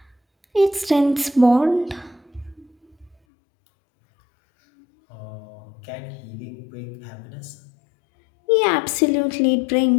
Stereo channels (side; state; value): right; drops out; at 3.2 s